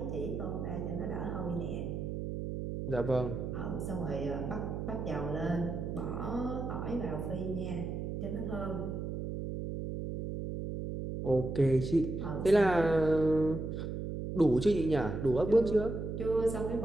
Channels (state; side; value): noise; right; hum, 4 dB below the sound